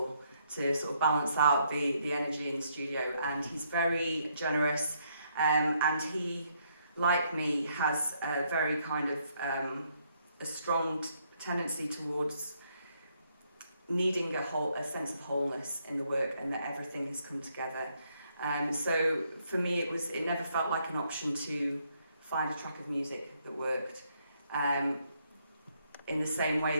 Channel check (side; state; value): both; inverted; correlation -0.72